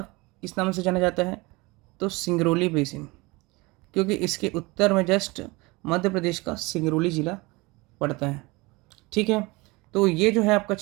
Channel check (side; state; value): left; quieter; 24.2 dB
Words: किस नाम से जाना जाता है? तो सिंगरौली बेसिन, क्योंकि इसके उत्तर में जस्ट मध्य प्रदेश का सिंगरौली जिला पड़ता है। ठीक है, तो ये जो है आपका